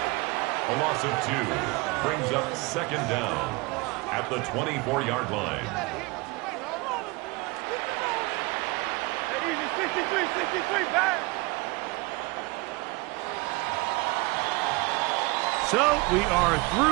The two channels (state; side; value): quieter; left; 24.6 dB